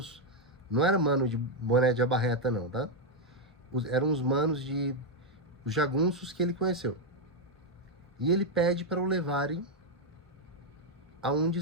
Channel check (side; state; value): both; normal; correlation 0.01